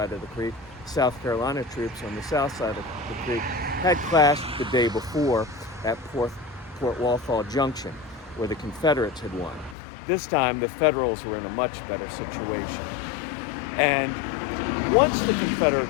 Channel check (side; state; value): right; drops out; at 9.8 s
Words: of the creek, South Carolina troops on the south side of the creek, had clashed the day before at Port Walthall Junction, where the Confederates had won. This time, the Federals were in a much better situation. And once the